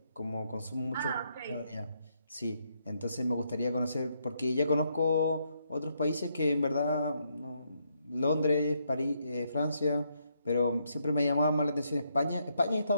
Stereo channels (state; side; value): inverted; both; correlation -0.77